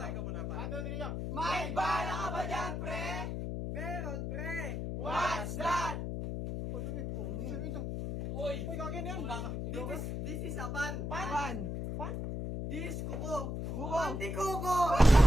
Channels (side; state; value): left; noise; hum, 3 dB below the sound